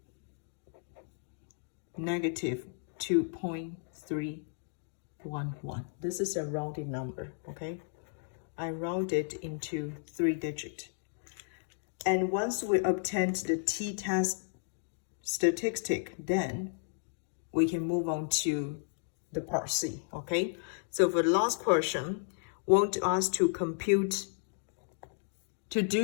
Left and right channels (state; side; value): silent; right; digital silence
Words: negative 2.311. This is a rounded number, okay? I round it into 3 digits. And once we obtain the t-test statistic, then we can move on to the part C, okay? So for the last question, want us to compute, to